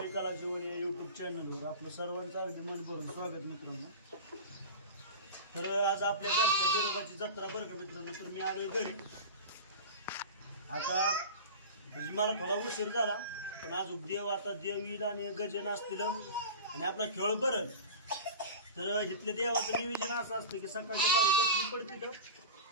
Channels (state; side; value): inverted; both; correlation -0.31